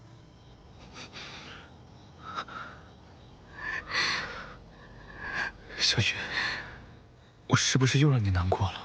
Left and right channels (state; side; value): identical; both; correlation 1.00